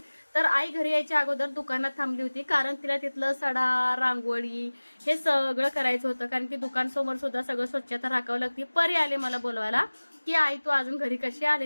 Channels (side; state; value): both; inverted; correlation -1.00